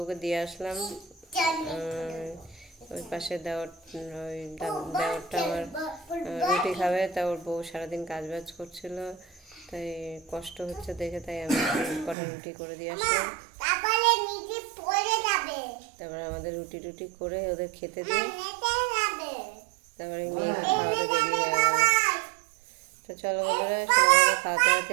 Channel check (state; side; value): drops out; left; at 12.2 s